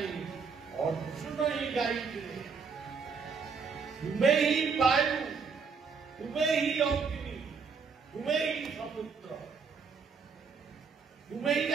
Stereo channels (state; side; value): quieter; left; 5.4 dB